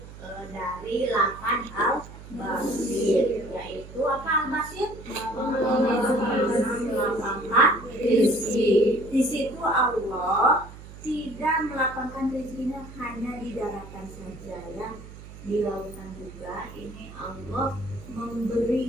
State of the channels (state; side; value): noise; right; hum, 16 dB below the sound